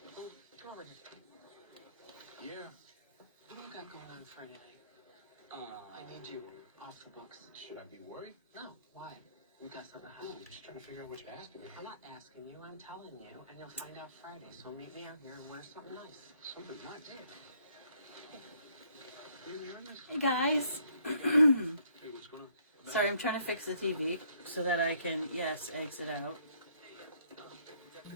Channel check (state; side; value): inverted; both; correlation -0.66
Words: Come over here. Yeah. What do you got going on Friday night? I need you off the books. Should I be worried? No. Why? We got something to hide. I'm just trying to figure out what you're asking me. I'm not asking you. I'm telling you, and you'll find out Friday. So meet me out here and wear something nice. Something nice? Yeah. You hearing this? Hey guys. Hey, what's going on? Sorry, I'm trying to fix the TV so that I can, yes, exit out.